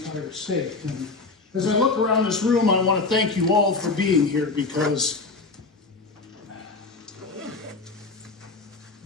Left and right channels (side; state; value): right; quieter; 3.9 dB